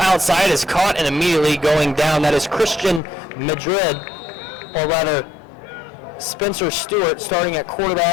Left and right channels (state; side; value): drops out; right; at 3.0 s